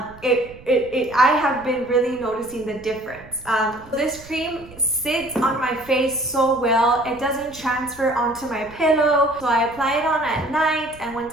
have been really noticing the difference. This cream sits on my face so well. It doesn't transfer onto my pillow. So I apply it on at night, and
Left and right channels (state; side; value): noise; right; rumble, 21 dB below the sound